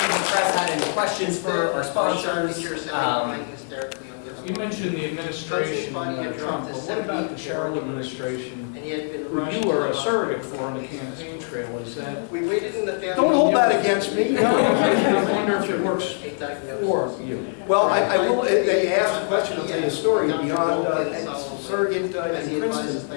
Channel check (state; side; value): silent; right; 63 dB below the other